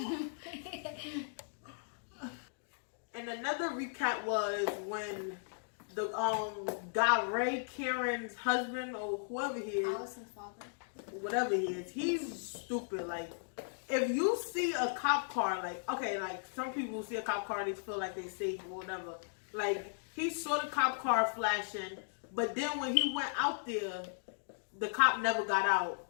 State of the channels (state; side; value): silent; right; digital silence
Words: And another recap was when the guy Ray Karen's husband or whoever he is, Allison's father. whatever he is, he's stupid. Like, if you see a cop car, like, okay, like some people see a cop car, they feel like they safe or whatever. Like, he saw the cop car flashing, but then when he went out there, the cop never got out.